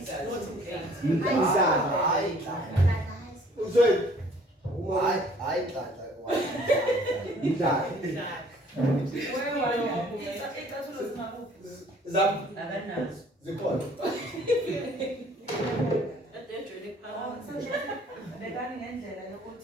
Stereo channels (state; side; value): normal; both; correlation 0.56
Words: hayi uzwe Hayi Nhlahla. mtata zam zikhona bekani ngendlela